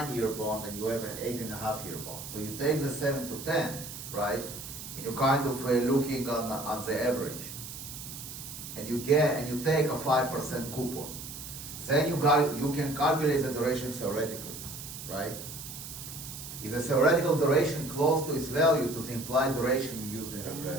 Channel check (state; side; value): noise; right; hiss, 10 dB below the sound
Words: bond and you have an 8.5-year bond. So you take the 7 to 10, right, and you're kind of looking on the average. And you take a 5% coupon. Then you can calculate the duration theoretically, right? Is the theoretical duration close to its value to the implied duration you used in